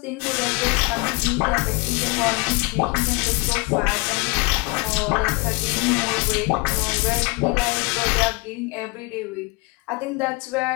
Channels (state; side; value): quieter; right; 27.6 dB